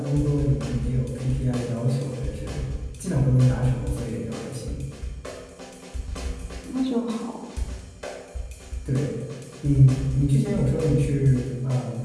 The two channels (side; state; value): both; identical; correlation 1.00